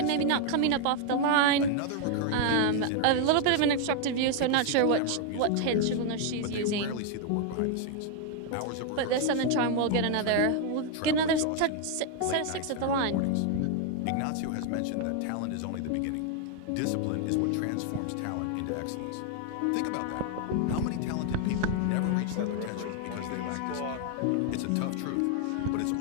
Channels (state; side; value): different; both; correlation 0.00